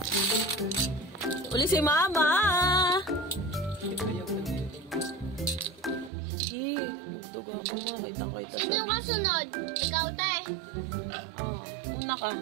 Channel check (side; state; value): left; drops out; at 6.1 s